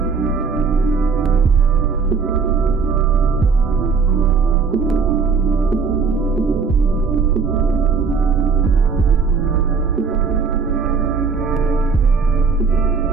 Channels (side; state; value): left; quieter; 5.3 dB